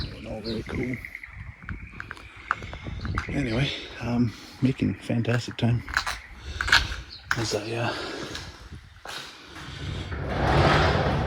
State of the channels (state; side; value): identical; both; correlation 1.00